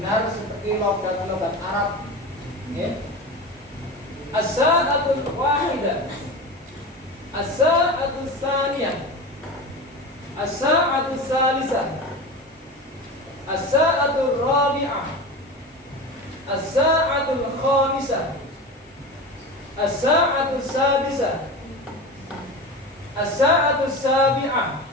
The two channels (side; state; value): both; normal; correlation 0.28